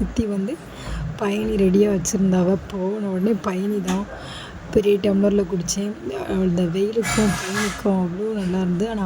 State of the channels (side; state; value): both; identical; correlation 1.00